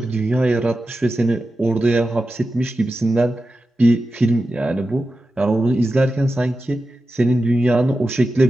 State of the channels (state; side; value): normal; both; correlation 0.92